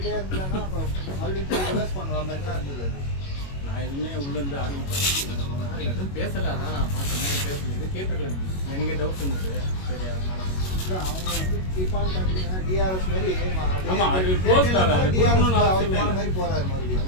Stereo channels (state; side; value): late; right; 21 ms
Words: இருந்தாங்கன்னா அப்புறம் மறுபடியும் போய் ரிவர்ஸ் பண்ணுற மாதிரி தான் இருந்தது. நான் எதுவுமே உள்ளேருந்து ஆரம்பிப்பேன். எதுவும் பேசலை. அதான் நான் பார்த்தேன் பேசல. இது கேட்டிருக்கேன். எனக்கே டவுட் இருந்தது. சரி அதனால இல்லை அவங்க வந்து கீப்பான் கண்டினியூ டிஆர்எஸ் மாதிரி ஆமாம் அது க்ளோஸ் கால். அது கொடுக்கணும்னு அவசியமே இல்லை. மாதிரி போறாரு மறுபடியும்.